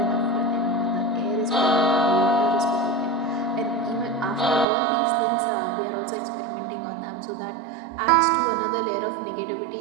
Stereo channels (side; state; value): left; drops out; at 4.7 s